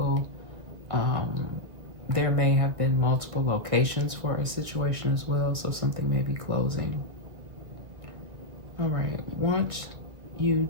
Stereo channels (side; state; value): left; late; 2.2 ms